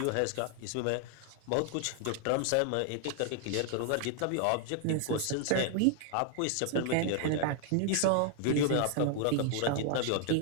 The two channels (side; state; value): both; different; correlation 0.00